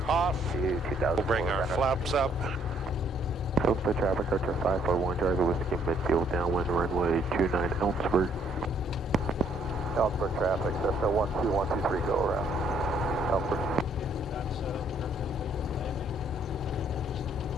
off, to 2,000. we'll bring our flaps up. Ellensburg traffic, Archer 541, Charlie Whiskey midfield downwind runway 29 Ellensburg. Ellensburg traffic, Cessna 12123, go around. Ellensburg.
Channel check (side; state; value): both; normal; correlation 0.66